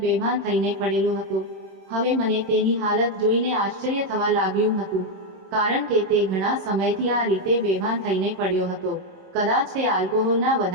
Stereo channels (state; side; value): late; left; 26 ms